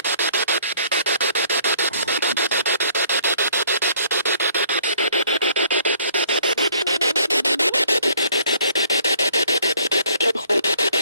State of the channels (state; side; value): inverted; both; correlation -0.60